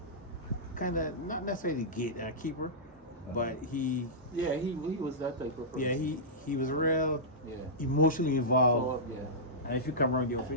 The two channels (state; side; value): normal; both; correlation -0.14